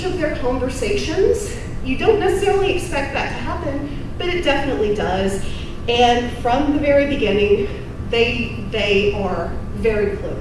of their conversations. You don't necessarily expect that to happen, but it definitely does. And from the very beginning, they are very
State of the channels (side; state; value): both; identical; correlation 1.00